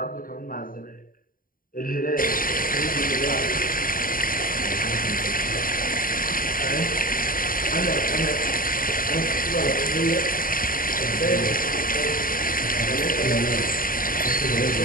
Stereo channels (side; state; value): right; late; 0.41 ms